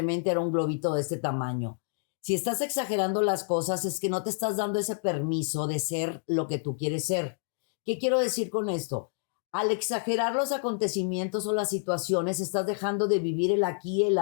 era un globito de este tamaño. Si estás exagerando las cosas, es que no te estás dando ese permiso de ser lo que tú quieres ser. ¿Qué quiero decir con esto? Al exagerar los acontecimientos o las situaciones, estás dejando de vivir el aquí, el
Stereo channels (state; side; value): silent; right; digital silence